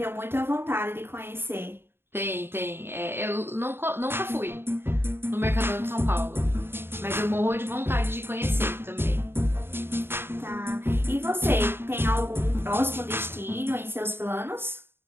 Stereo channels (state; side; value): late; left; 0.11 ms